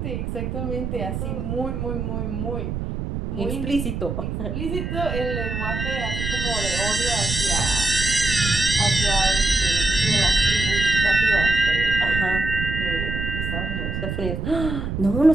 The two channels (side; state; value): right; noise; rumble, 4 dB below the sound